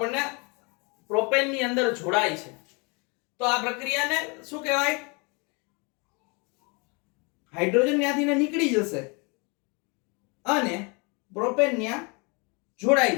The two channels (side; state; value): right; quieter; 30.7 dB